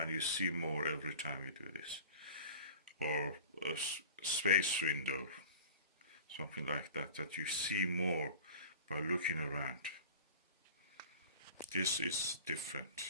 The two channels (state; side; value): inverted; both; correlation -0.38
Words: you see more every time you do this. Or a space window, something like that, that you see more by looking around. This is different.